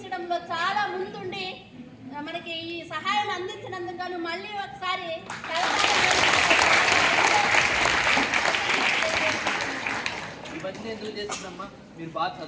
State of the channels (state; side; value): identical; both; correlation 1.00